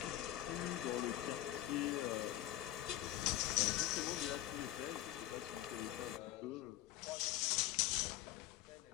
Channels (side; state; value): right; quieter; 14.3 dB